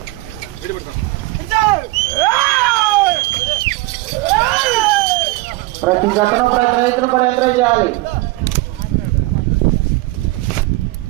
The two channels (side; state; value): left; quieter; 21.8 dB